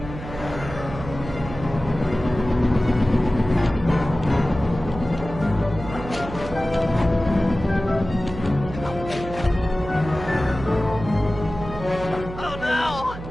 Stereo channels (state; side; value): noise; right; hum, 11 dB below the sound